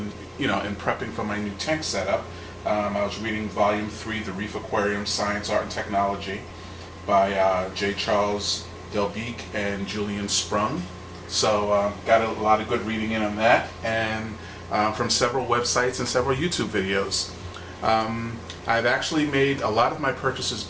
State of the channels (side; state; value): both; identical; correlation 1.00